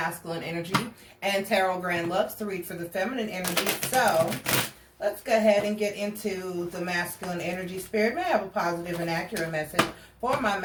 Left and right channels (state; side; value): identical; both; correlation 1.00